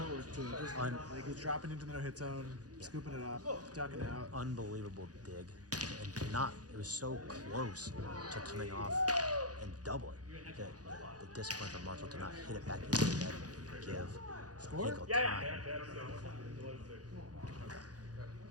too. Just, like he's dropping into the no-hit zone, scooping it up, ducking out. Unbelievable dig. And it was so close to coming off and doubling. The discipline from Marshall to not hit it back into the net and give Hinkle time.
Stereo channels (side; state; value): left; late; 0.68 ms